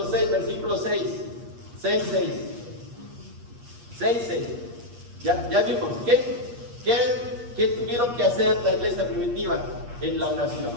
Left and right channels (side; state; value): left; late; 8.4 ms